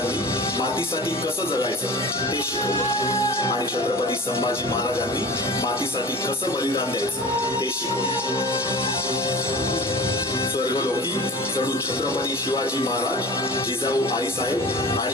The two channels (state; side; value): normal; both; correlation 0.37